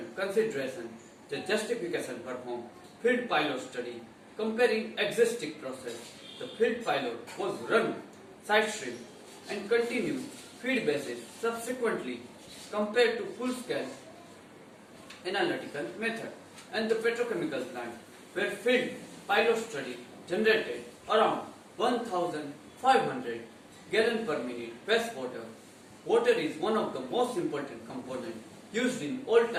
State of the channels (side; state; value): both; identical; correlation 1.00